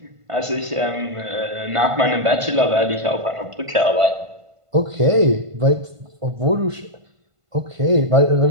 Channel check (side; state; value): left; late; 1.5 ms